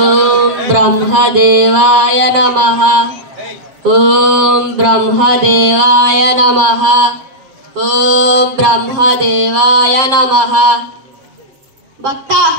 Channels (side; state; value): left; late; 7.5 ms